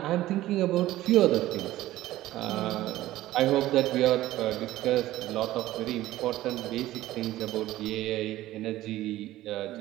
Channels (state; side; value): quieter; left; 15.5 dB